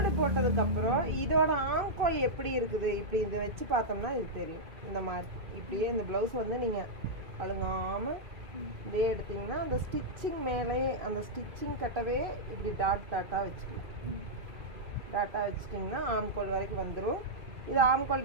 போட்டதுக்கப்புறம் இதோட ஆம்கோல் எப்படி இருக்குது இப்படி இதை வச்சு பார்த்தோம்னா இது தெரியும். இந்த மாதிரி இப்படியே இந்த ப்ளவுஸ் வந்து நீங்கள் அழுங்காமல் இதே எடுத்தீங்கன்னா அந்த ஸ்டிச்சிங் மேலே அந்த ஸ்டிச்சிங் கட்டவே இப்படி டாட்டாக வச்சுக்கலாம். டாட்டாக வச்சுட்டிங்கன்னா ஆம்கோல் வரைக்கும் வந்துடும். இது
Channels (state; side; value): late; left; 2.7 ms